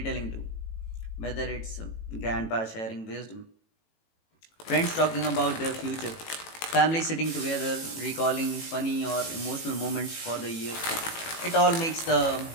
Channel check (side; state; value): right; late; 18 ms